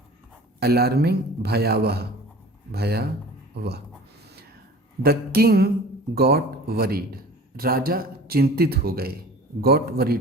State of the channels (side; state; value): both; normal; correlation 0.42